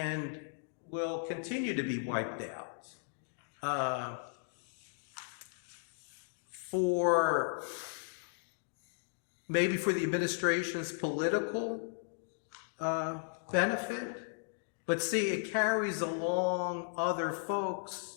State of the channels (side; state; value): right; silent; digital silence